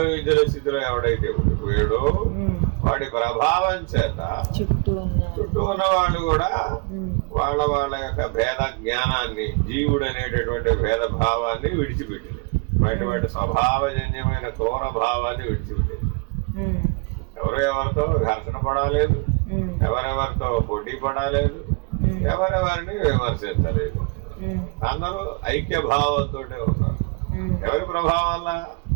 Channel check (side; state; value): left; quieter; 29.3 dB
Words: స్థితిలో ఎవడైతే ఉండిపోయాడో వాడి ప్రభావం చేత చుట్టూ ఉన్న వాళ్ళు కూడా వాళ్ళ యొక్క భేద జ్ఞానాన్ని, జీవుడు అనేటటువంటి భేద భావాన్ని విడిచిపెట్టింది. వాటి స్వభావజన్యమైన క్రూర భావాన్ని విడిచిపెట్టింది. ఎవరెవరితో ఘర్షణ పడాలేదు, ఎవరెవరితో పోటీ పడాలేదు, ఎవరెవరిని విమర్శించలేదు. అందరూ ఐక్య భావంతో ఉన్నారు. ఎవరి ప్రభావం వల్ల?